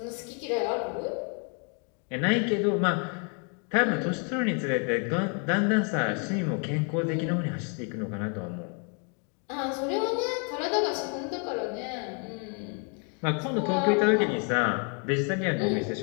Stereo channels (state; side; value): quieter; right; 38.8 dB